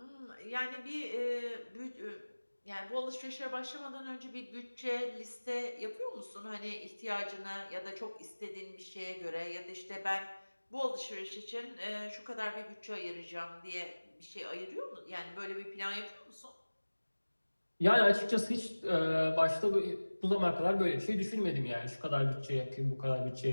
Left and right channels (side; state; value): both; inverted; correlation -1.00